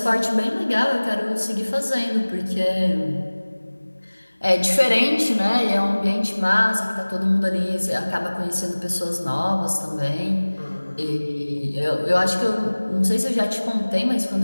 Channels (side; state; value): both; inverted; correlation -1.00